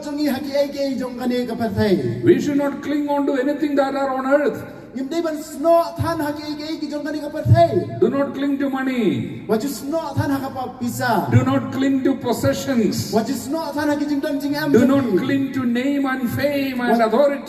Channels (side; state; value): both; identical; correlation 1.00